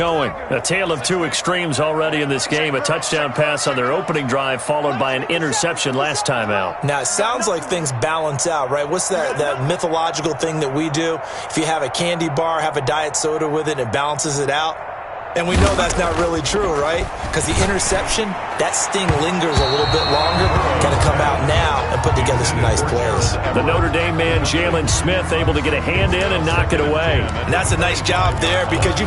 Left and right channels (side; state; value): both; identical; correlation 1.00